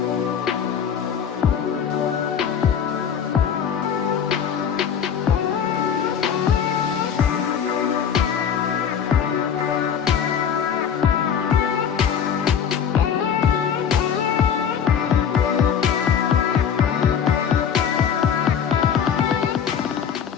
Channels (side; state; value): right; quieter; 7.8 dB